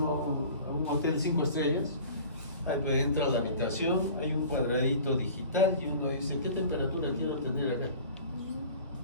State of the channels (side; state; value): both; inverted; correlation -0.43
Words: a un hotel 5 estrellas, ahí entra a la habitación, hay un cuadradito digital y uno dice, ¿qué temperatura quiero tener acá?